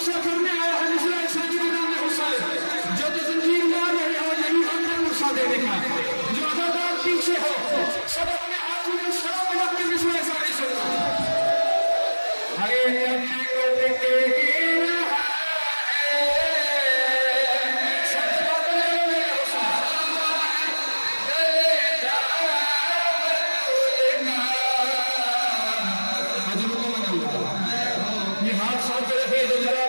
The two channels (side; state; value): both; inverted; correlation -1.00